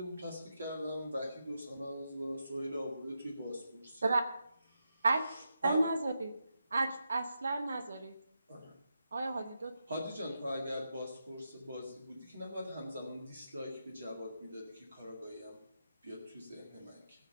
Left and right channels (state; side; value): inverted; both; correlation -0.86